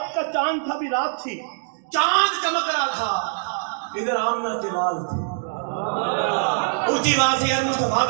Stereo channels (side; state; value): left; silent; digital silence